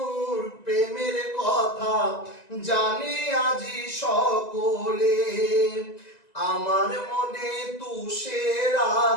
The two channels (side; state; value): right; late; 1.9 ms